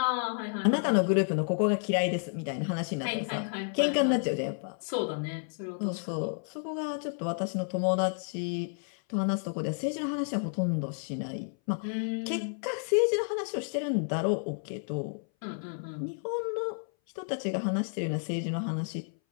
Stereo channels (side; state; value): right; silent; 57 dB below the other